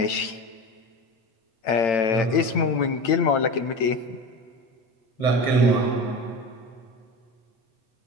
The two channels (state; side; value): late; right; 8.9 ms